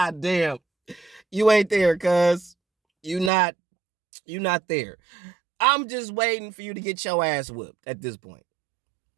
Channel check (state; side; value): drops out; left; at 3.3 s